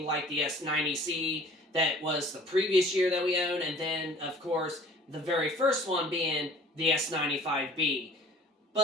like the S90C that was the previous year that we owned, and then, of course, the very first one being the S95B.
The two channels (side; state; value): both; normal; correlation 0.49